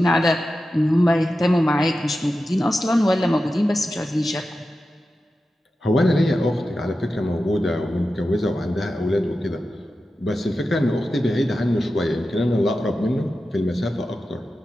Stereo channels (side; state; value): both; normal; correlation 0.92